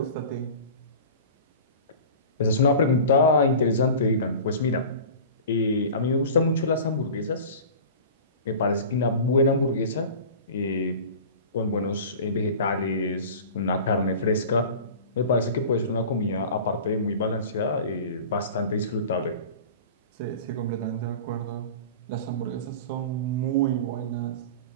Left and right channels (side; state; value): both; inverted; correlation -0.37